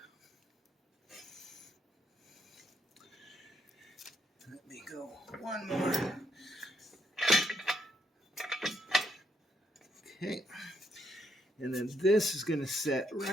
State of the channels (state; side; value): normal; both; correlation 0.74